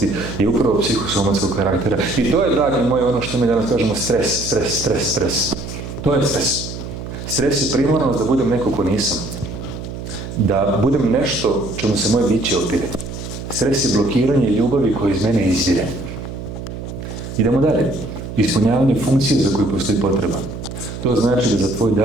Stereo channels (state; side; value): noise; right; hum, 9 dB below the sound